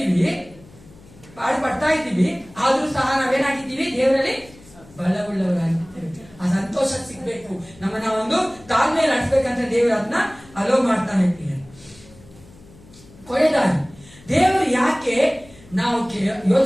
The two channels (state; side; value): noise; left; hum, 23 dB below the sound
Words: ಪಾಡು ಪಡ್ತಾ ಇದ್ದೀವಿ, ಆದ್ರೂ ಸಹ ನಾವೇನಾಗಿದ್ದೀವಿ, ದೇವರಲ್ಲಿ ಬಲವುಳ್ಳವರಾಗಿದ್ದೇವೆ. ಆ ಸಂತೋಷ ಸಿಗ್ಬೇಕು, ನಮ್ಮನ್ನ ಒಂದು ತಾಳ್ಮೆಯಲ್ಲಿ ನಡೆಸ್ಬೇಕಂತ ದೇವರು ಅದನ್ನ ಅಲೋ ಮಾಡ್ತಾನೆ. ಕೊನೆಯದಾಗಿ ದೇವರು ಯಾಕೆ ನಾವು